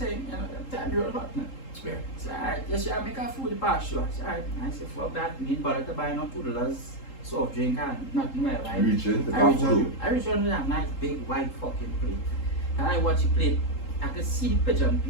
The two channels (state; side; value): late; right; 3.8 ms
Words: you know, time you're hot now. Yeah. So alright, yes, she make her food past you. I said, alright, I said, fuck that, need bother to buy no $2 soft drink and nothing like that. Reaching the I reach bathroom. on with that nice big white fucking plate. And I watch the plate, I could see the pigeon